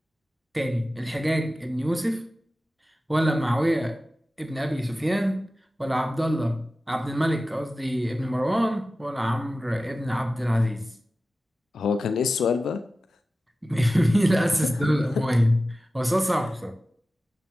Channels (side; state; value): both; normal; correlation 0.95